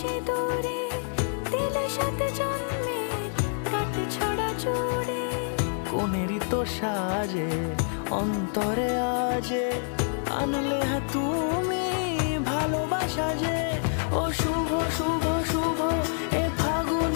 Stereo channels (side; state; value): right; silent; digital silence